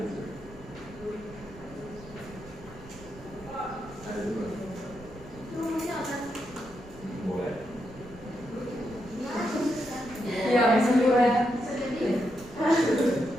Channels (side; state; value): right; noise; rumble, 18 dB below the sound